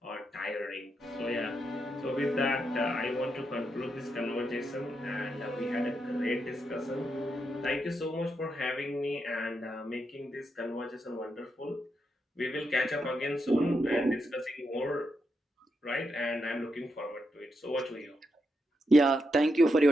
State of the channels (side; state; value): both; normal; correlation 0.83